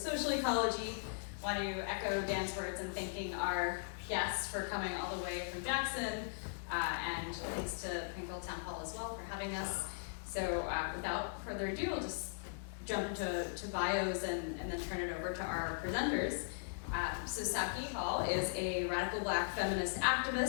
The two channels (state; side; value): silent; right; digital silence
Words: Ecology. Want to echo Dan's words in thanking our guests for coming all the way from Jackson, and thanks to Plainfield Town Hall as well for having us. So without further ado, I'll just jump into bios and then turn it over to our presenters. So Saki Hall is a radical Black feminist